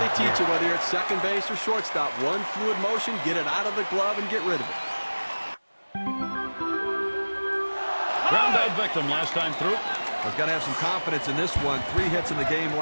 teach you, whether you're at second base or shortstop. One fluid motion, get it out of the glove and get rid of it. Ground out victim last time through. He's got to have some confidence in this one. 3 hits in the game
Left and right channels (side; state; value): both; inverted; correlation -1.00